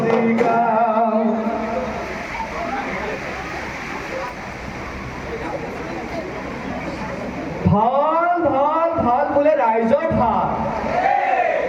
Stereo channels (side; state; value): both; identical; correlation 1.00